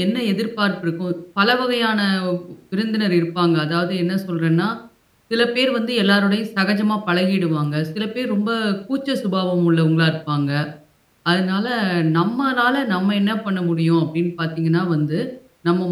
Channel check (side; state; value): both; identical; correlation 1.00